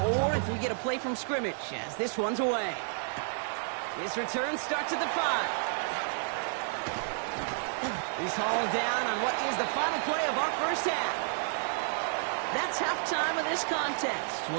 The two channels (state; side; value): silent; left; 57 dB below the other